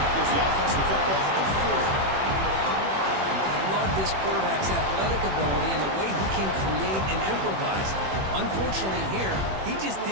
gives the offense the football at the 40. I love this quarterback's athletic ability and the way he can create and improvise. Unfortunately here, he just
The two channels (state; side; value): late; left; 21 ms